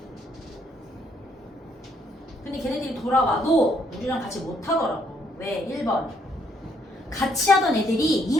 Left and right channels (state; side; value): normal; both; correlation 0.70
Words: 근데 걔네들이 돌아와도 우리랑 같이 못하더라고. 왜? 1번. 같이 하던 애들이